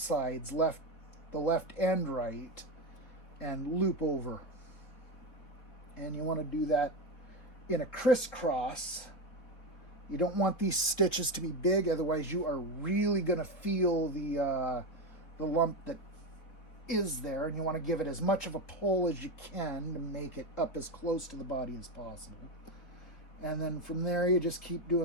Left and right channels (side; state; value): right; late; 4.0 ms